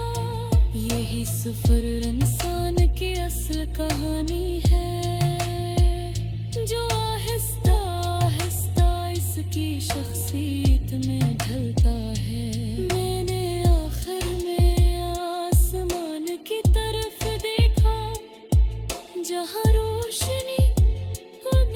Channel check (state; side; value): identical; both; correlation 1.00